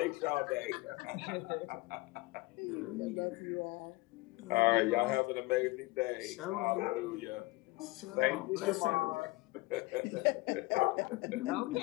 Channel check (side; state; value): right; quieter; 21.9 dB